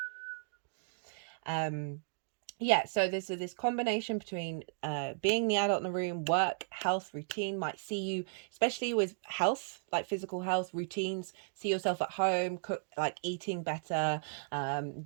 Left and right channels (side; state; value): left; silent; digital silence